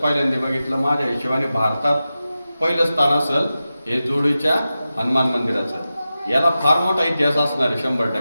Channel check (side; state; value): both; inverted; correlation -0.93